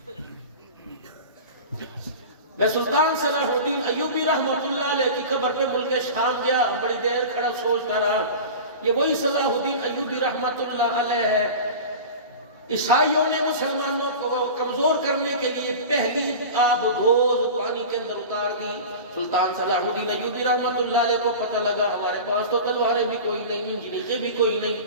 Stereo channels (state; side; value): inverted; both; correlation -0.33